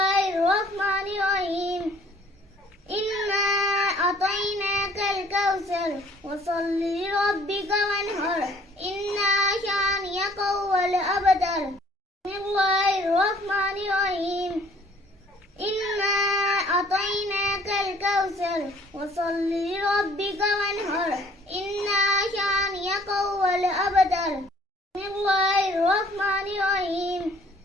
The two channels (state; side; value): normal; both; correlation 0.57